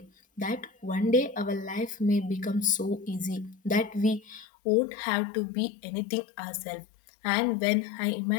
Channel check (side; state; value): right; drops out; at 4.5 s